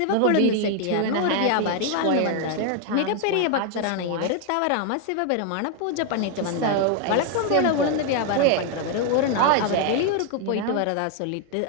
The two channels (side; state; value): both; different; correlation 0.00